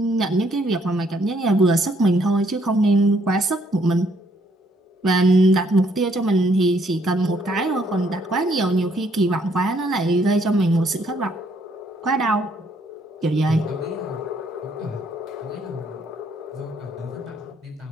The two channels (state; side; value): normal; both; correlation 0.68